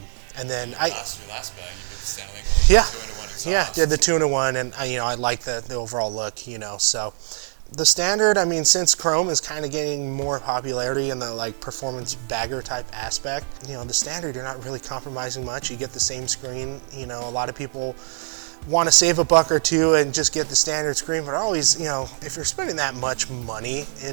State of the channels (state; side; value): silent; left; digital silence